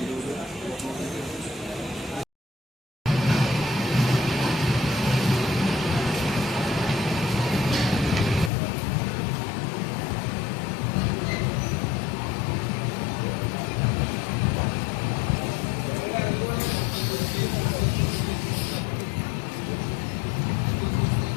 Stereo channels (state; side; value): drops out; right; at 8.5 s